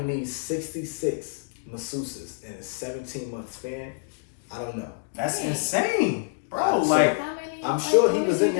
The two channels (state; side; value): silent; right; digital silence